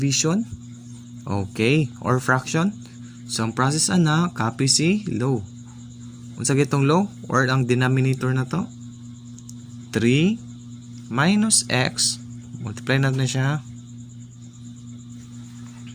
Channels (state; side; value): identical; both; correlation 1.00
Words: Okay, or fraction. So ang process ana copy si low. Unsa gitong low or ang denominator na to? 3 minus x. Multiply natin siya.